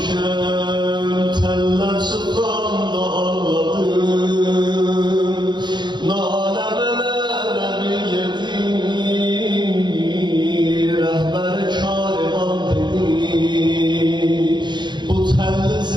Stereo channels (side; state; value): left; late; 0.22 ms